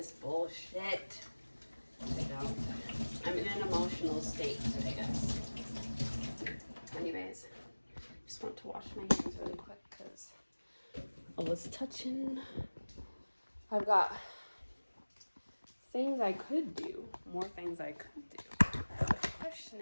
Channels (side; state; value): both; inverted; correlation -1.00